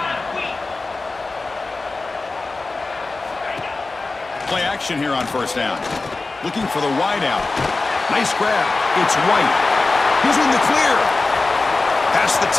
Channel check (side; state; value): right; quieter; 3.6 dB